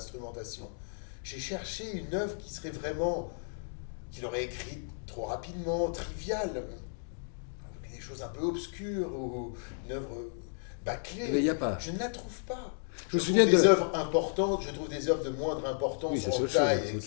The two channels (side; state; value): right; silent; digital silence